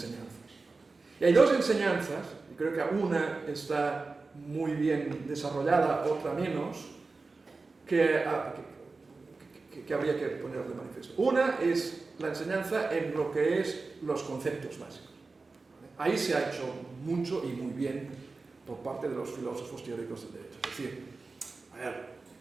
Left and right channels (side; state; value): left; quieter; 3.9 dB